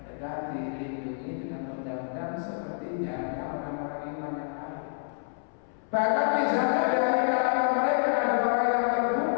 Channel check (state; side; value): silent; right; 59 dB below the other